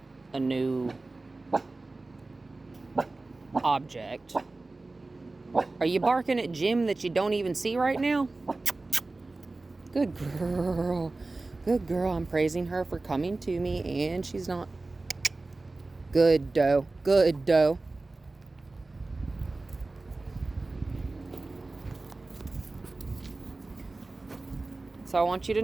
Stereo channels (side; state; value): left; quieter; 3.3 dB